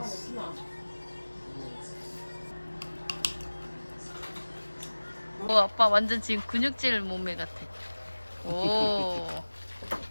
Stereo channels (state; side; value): inverted; both; correlation -1.00